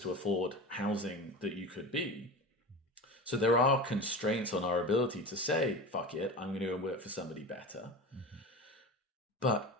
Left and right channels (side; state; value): both; normal; correlation 0.29